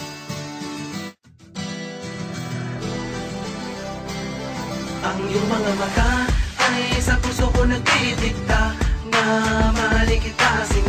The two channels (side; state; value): both; identical; correlation 1.00